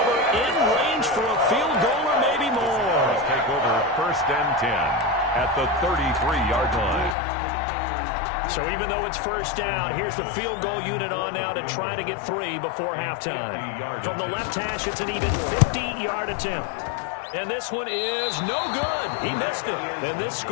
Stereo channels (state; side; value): drops out; right; at 7.2 s